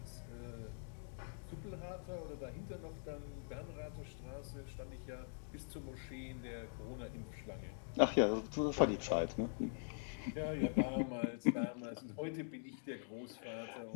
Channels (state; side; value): silent; right; digital silence